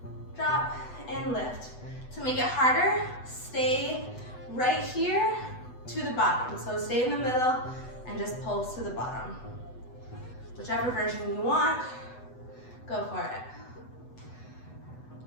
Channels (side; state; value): right; late; 8.0 ms